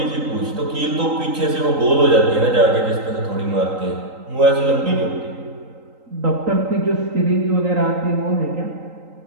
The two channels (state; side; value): late; left; 3.8 ms